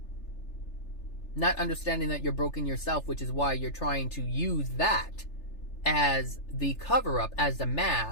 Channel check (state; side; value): late; right; 3.4 ms